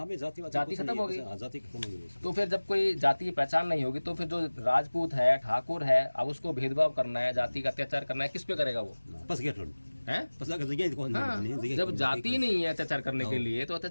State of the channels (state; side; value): inverted; both; correlation -1.00